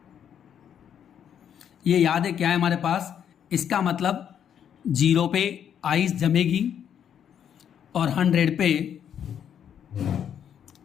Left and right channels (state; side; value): quieter; right; 8.9 dB